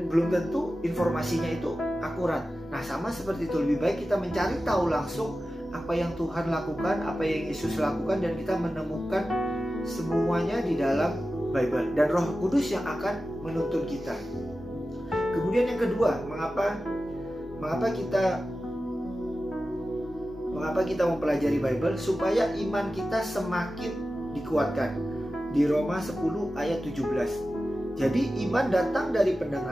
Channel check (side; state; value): both; normal; correlation 0.94